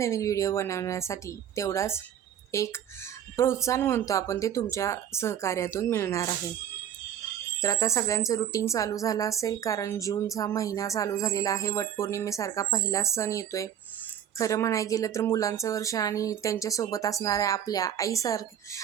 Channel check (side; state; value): left; quieter; 9.8 dB